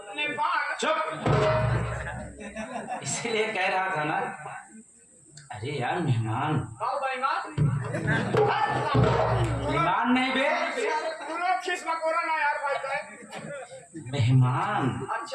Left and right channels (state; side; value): identical; both; correlation 1.00